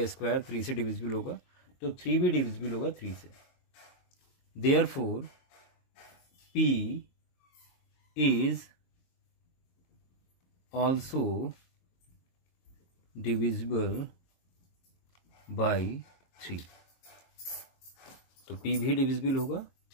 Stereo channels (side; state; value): right; late; 22 ms